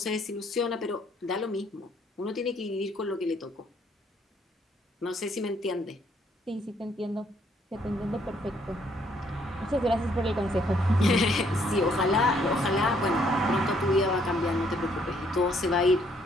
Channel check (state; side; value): normal; both; correlation 0.67